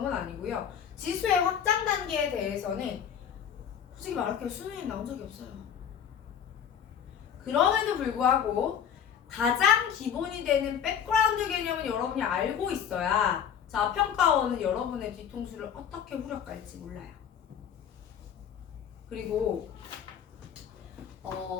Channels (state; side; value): quieter; right; 8.4 dB